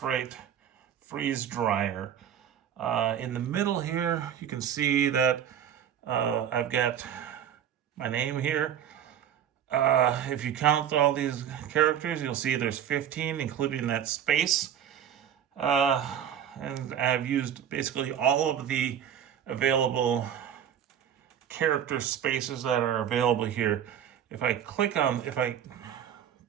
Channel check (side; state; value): left; quieter; 9.5 dB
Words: Right freeze dryer. In the middle here, you can see that I've got my name here. If you count all these characters, you'll see there's 15, including that space. And I've used basically all of the available character spaces that are available here. If I click on